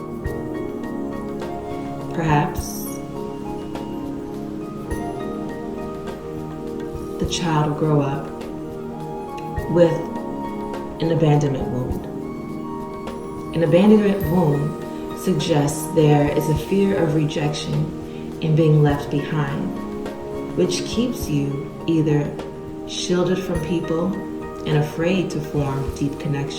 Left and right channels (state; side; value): identical; both; correlation 1.00